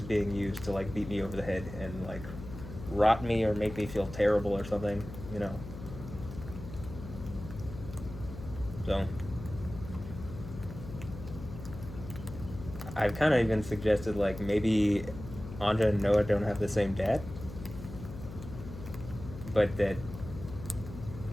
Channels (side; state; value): left; noise; hum, 11 dB below the sound